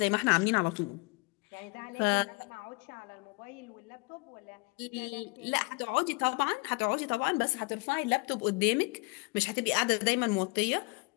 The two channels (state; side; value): quieter; right; 29.0 dB